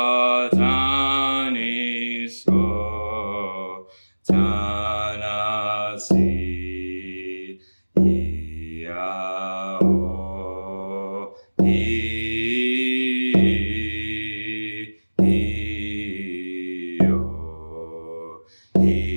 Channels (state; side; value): inverted; both; correlation -1.00